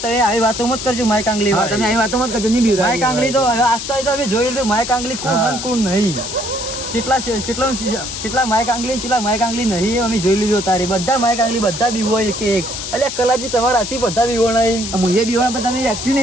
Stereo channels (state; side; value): noise; left; hiss, 7 dB below the sound